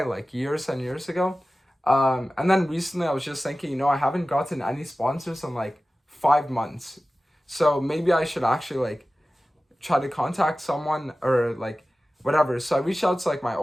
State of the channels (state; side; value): normal; both; correlation 0.96